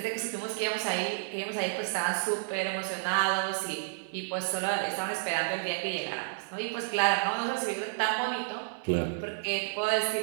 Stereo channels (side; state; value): left; silent; 56 dB below the other